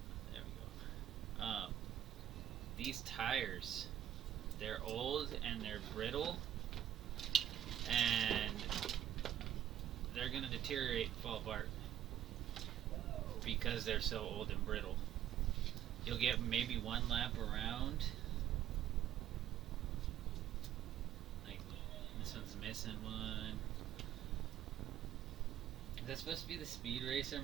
There we go. These tires, they're old and they're brittle, and they're gonna deteriorate and fall apart because they're so old and brittle. You'll get maybe one lap around. Like, this one's missing one. Is that supposed to be the Speed Racer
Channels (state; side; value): quieter; left; 11.0 dB